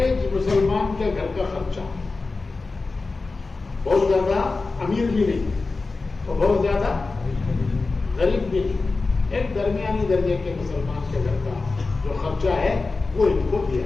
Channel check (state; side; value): quieter; right; 3.8 dB